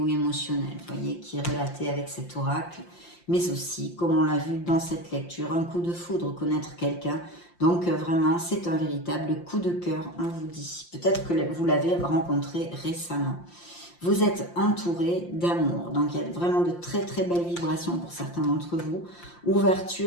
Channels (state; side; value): late; right; 5.7 ms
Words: émotionnelle, vous voyez, qui est relatée avec cet oracle. Mais aussi, comme on l'a vu dans cette lecture, un coup de foudre, connaître quelqu'un. Donc, vraiment, c'est un véritable coup de cœur, on vous dit. Peut-être que vous l'avez rencontré récemment. Vous êtes entouré d'amour. Donc, il y a vraiment de très, très belles vibrations pour certains d'entre vous.